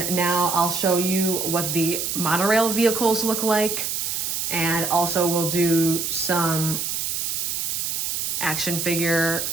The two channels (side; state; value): right; noise; hiss, 1 dB below the sound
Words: now I'll show you what the monorail vehicles look like. And also we'll do some action figure